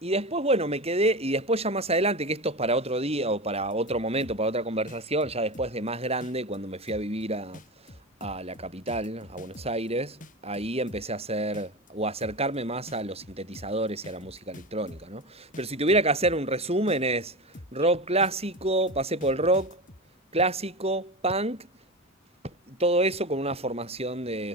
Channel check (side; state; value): both; normal; correlation 0.23